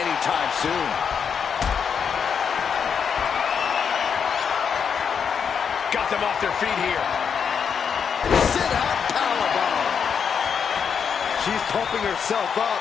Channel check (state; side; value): quieter; right; 6.9 dB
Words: soon. Got them off their feet here. Sit-out powerbomb. She's pumping herself up,